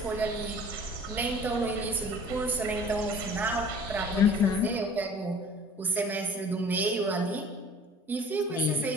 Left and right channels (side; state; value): both; normal; correlation 0.48